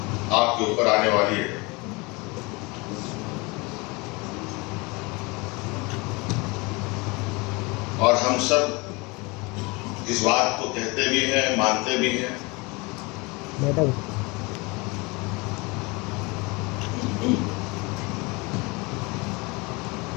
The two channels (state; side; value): quieter; right; 26.4 dB